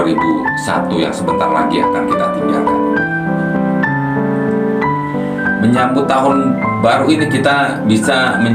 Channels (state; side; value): identical; both; correlation 1.00